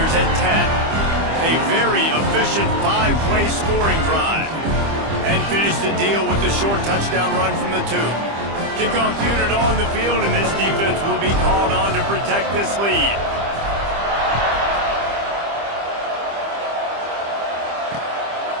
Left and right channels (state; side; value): late; left; 25 ms